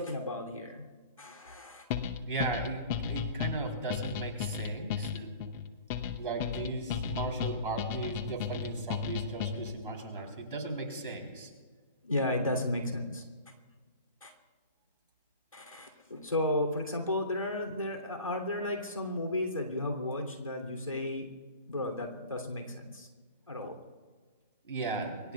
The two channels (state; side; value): inverted; both; correlation -0.40